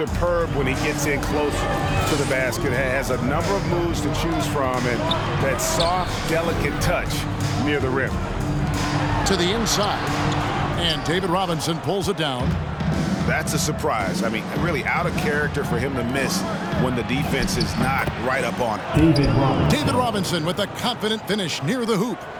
when he gets in closer to the basket. Has a number of moves to choose from, and that soft, delicate touch near the rim. To the inside. And David Robinson pulls it down. That's a surprise. I mean, really out of character for him to miss when the defense is not right up on it. David Robinson with a confident finish near the hoop.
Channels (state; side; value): identical; both; correlation 1.00